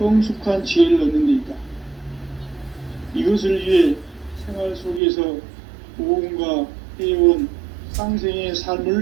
지혜를 얻는 데 있다. 이것을 위해 생활 속에서 보험과 회원, 상생의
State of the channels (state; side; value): drops out; left; at 5.0 s